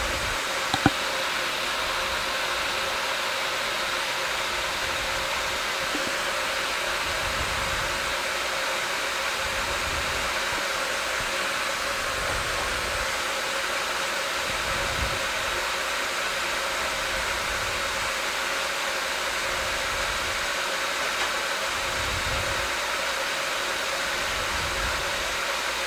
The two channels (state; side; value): identical; both; correlation 1.00